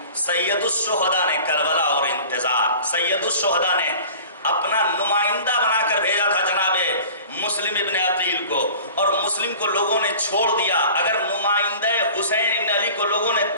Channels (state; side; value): inverted; both; correlation -0.43